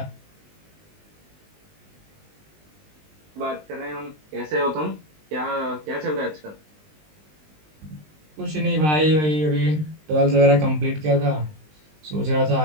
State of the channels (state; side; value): late; left; 20 ms